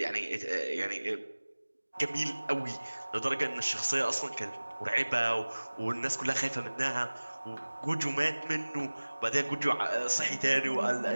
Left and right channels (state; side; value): inverted; both; correlation -1.00